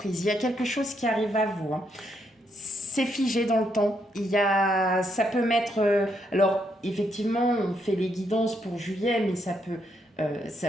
Il y a quelque chose qui arrive à vous. Hein. C'est figé dans le temps. Ça peut mettre... alors, effectivement, on fait les guidances pour juillet, mais ça peut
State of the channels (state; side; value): normal; both; correlation 0.76